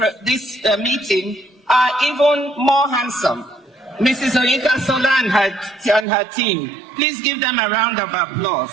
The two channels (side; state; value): left; drops out; at 6.1 s